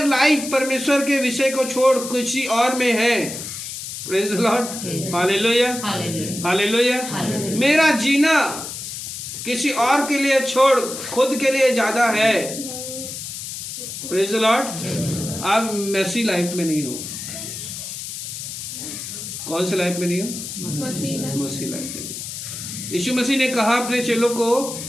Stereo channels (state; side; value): noise; left; hiss, 8 dB below the sound